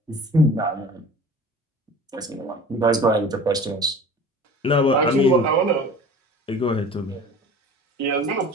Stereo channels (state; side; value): normal; both; correlation 0.42